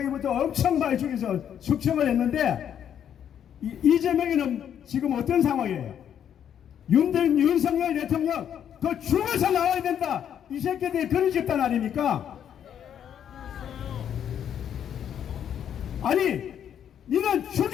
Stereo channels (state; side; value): quieter; right; 9.2 dB